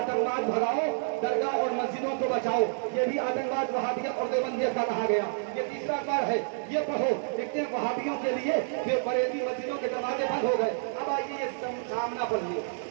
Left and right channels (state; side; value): silent; left; digital silence